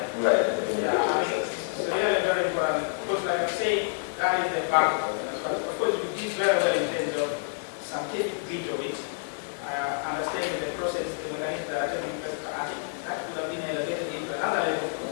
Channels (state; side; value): silent; right; digital silence